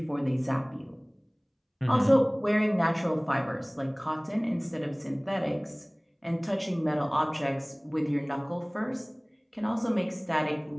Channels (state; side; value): identical; both; correlation 1.00